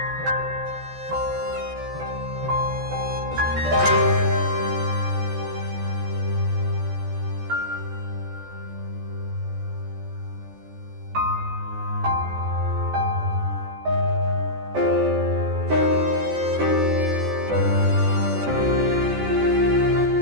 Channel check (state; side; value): late; left; 14 ms